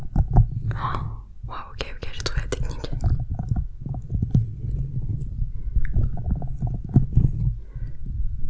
wow, ok, j'ai trouvé la technique.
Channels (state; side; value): identical; both; correlation 1.00